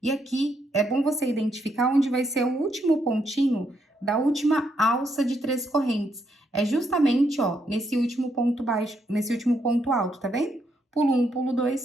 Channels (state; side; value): normal; both; correlation 0.77